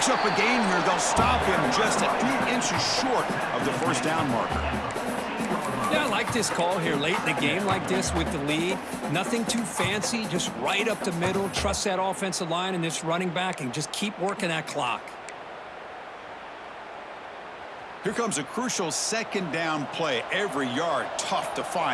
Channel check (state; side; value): identical; both; correlation 1.00